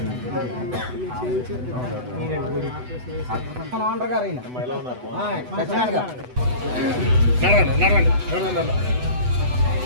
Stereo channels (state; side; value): late; left; 8.0 ms